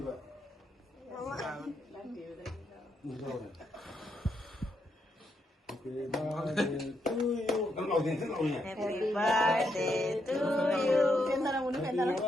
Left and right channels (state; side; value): normal; both; correlation 0.79